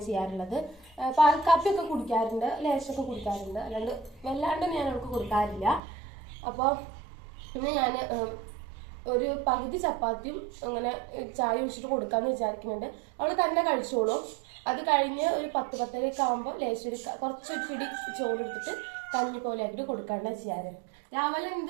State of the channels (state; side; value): drops out; left; at 5.8 s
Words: ചെയ്യാറുള്ളത്. പാൽ കാപ്പിയൊക്കെ കുടിക്കാറുണ്ട്, ലേശമൊക്കെ കുടിക്കാറുണ്ട്, വല്ലാണ്ട് ഞാൻ അവൾക്ക് കൊടുക്കാറില്ല. അപ്പോൾ പിന്നെ ഞാൻ ഒരു പകുതി ചപ്പാത്തിയും അങ്ങനെ ചായ ഒഴിച്ചിട്ട് കൊടുക്കാമെന്ന് വിചാരിക്കുന്നുണ്ട്. അവൾ തന്നെ കഴിച്ചോളും. അത് കഴിഞ്ഞ് ഒരു 10-10:30 ആകുമ്പോൾ ലേശം കുറച്ചൊരു പിടി ചോറെടുത്തിട്ട് കഞ്ഞി പോലെ ആക്കിയിട്ട് കൊടുക്കാണ്ട് ചെയ്യാറ്. രാവിലെ